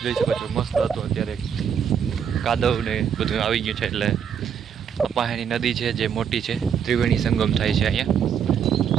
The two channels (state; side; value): quieter; left; 7.8 dB